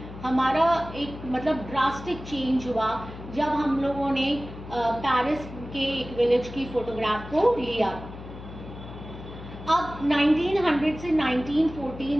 हमारा एक मतलब ड्रास्टिक चेंज हुआ जब हम लोगों ने पेरिस के एक विलेज की फोटोग्राफ को लिया। अब 1900 से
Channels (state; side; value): noise; left; hum, 13 dB below the sound